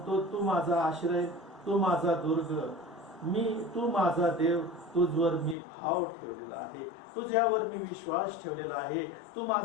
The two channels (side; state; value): right; drops out; at 5.6 s